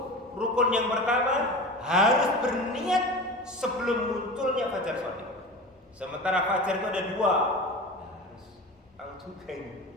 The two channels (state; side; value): normal; both; correlation 0.32